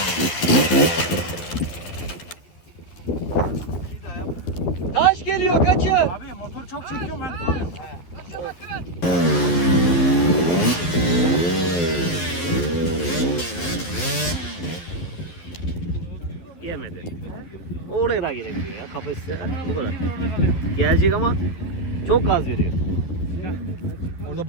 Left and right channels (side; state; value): right; late; 11 ms